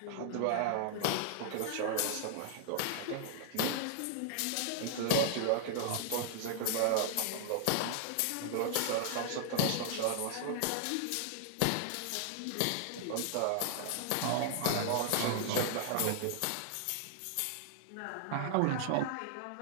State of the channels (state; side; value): different; both; correlation -0.01